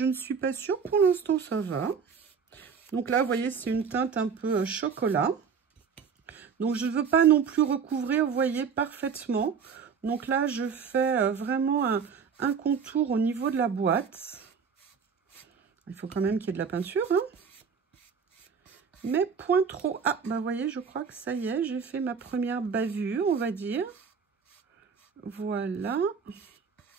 ne suis pas sûre. Pour l'instant, ça va. Donc là, vous voyez, c'est une teinte un peu chocolat. Donc, je ne veux pas non plus recouvrir, vous voyez, parfaitement. Donc là, je fais vraiment un contour au niveau de la boîte. Il faut quand même qu'il y ait de la peinture, hein. Mais point trop. Ah, bah vous voyez, je crois que ça y est, j'ai fait ma première bavure, on va dire. Voilà.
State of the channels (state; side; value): quieter; left; 6.3 dB